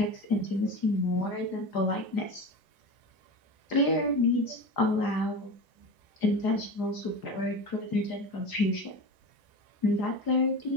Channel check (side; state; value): right; late; 1.0 ms